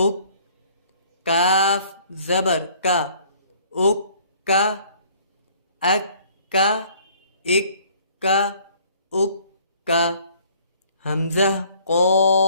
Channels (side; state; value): both; inverted; correlation -0.57